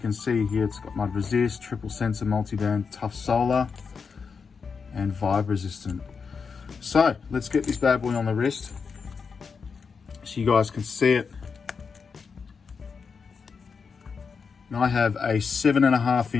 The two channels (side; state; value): right; quieter; 5.5 dB